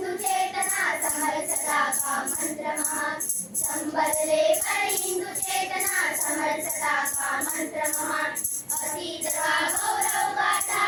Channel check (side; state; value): both; identical; correlation 1.00